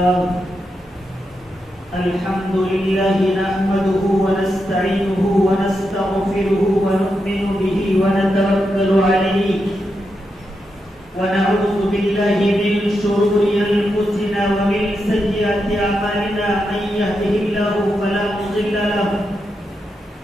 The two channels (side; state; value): both; normal; correlation 0.85